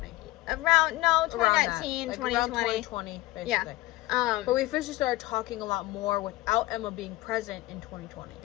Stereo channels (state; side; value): quieter; right; 18.7 dB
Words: 2019, like 2020. around 2020, basically. Yeah. But we officially started talking a lot more without Emma being present in 2020.